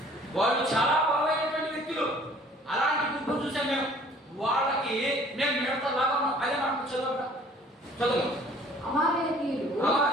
వాళ్ళు చాలా బలమైనటువంటి వ్యక్తులు. అలాంటి గుంపు చూసాం మేము. వాళ్ళకి మేము మిడతలాగా అదే మనకు చదువు. అమాలేకీయులు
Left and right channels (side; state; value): both; normal; correlation 0.54